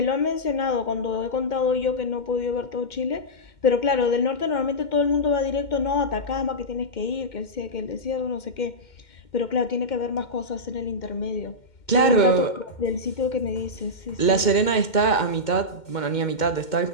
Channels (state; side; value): late; right; 2.1 ms